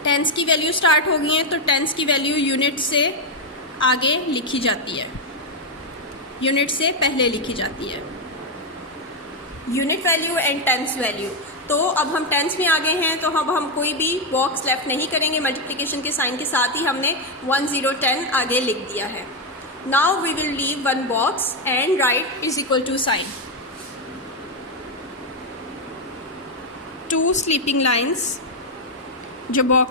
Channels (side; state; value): both; normal; correlation 0.04